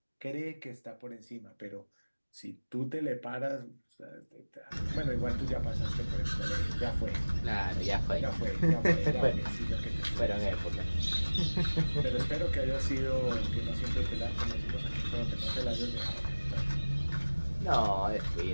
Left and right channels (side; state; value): both; inverted; correlation -1.00